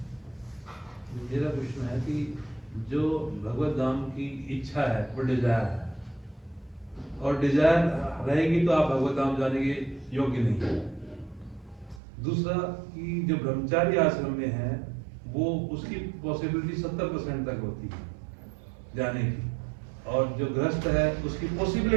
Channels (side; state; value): left; drops out; at 12.0 s